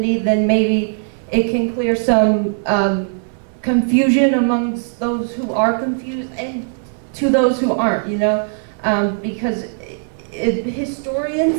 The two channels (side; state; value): left; silent; 67 dB below the other